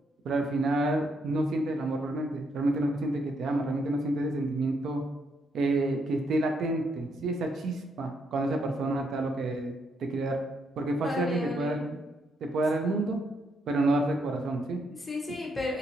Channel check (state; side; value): normal; both; correlation 0.76